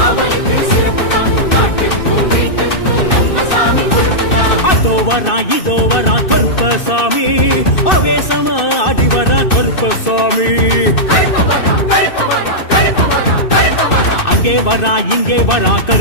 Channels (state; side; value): late; right; 2.6 ms